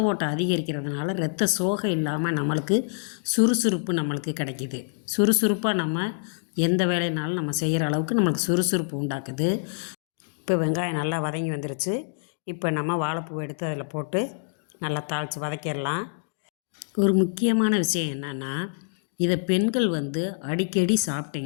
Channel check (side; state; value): right; silent; digital silence